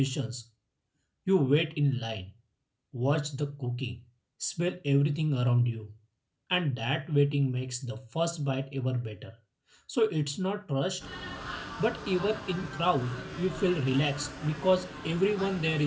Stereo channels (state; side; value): identical; both; correlation 1.00